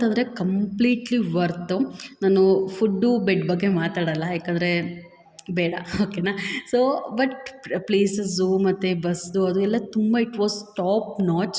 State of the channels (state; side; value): identical; both; correlation 1.00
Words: ಕಂಪ್ಲೀಟ್ಲಿ ವರ್ತು. ನಾನು ಫುಡ್ಡು, ಬೆಡ್ ಬಗ್ಗೆ ಮಾತಾಡಲ್ಲ, ಯಾಕಂದರೆ ಬೇಡ, ಓಕೆನಾ. ಸೊ ಬಟ್ ಪ್ಲೇಸಸ್ಸು ಮತ್ತು ಬಸ್ದು ಅದು ಎಲ್ಲ ತುಂಬ ಇಟ್ ವಾಸ್ ಟಾಪ್